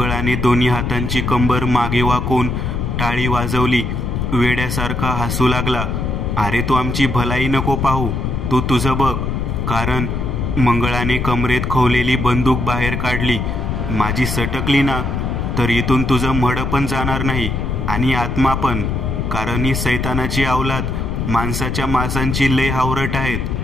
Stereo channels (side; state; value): left; noise; rumble, 2 dB below the sound